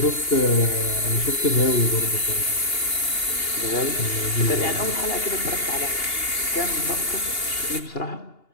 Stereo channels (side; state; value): right; late; 2.8 ms